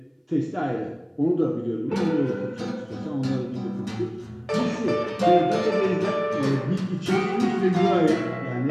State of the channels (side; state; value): both; identical; correlation 1.00